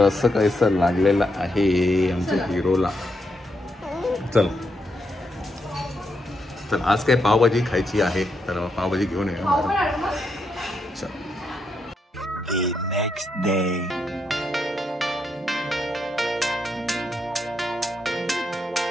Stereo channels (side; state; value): both; normal; correlation 0.81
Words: असं काहीसं लागलेलं आहे आमच्या हिरोला. चल तर आज काय पावभाजी खायची आहे, तर पावभाजी घेऊन येऊया. चल. Next day.